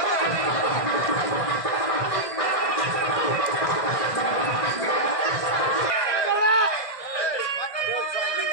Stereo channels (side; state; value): right; late; 1.6 ms